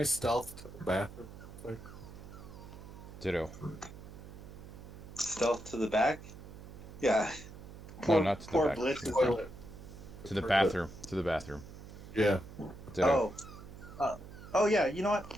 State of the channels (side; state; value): right; noise; hum, 14 dB below the sound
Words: stealth to the bathroom real quick? Ditto. Stealth to the back. Yeah. No, Poor not to the poor back. Blitz To the is. front. Toilet. To the bathroom. To the bathroom. Yeah. Ditto. Oh. Uh, oh yeah. You know